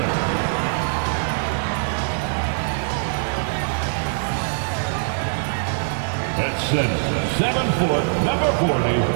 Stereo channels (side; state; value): left; silent; digital silence